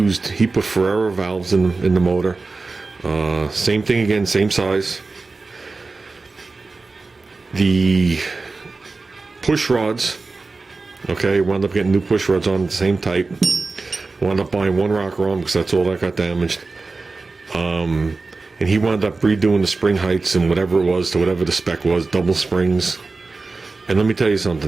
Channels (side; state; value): left; quieter; 3.8 dB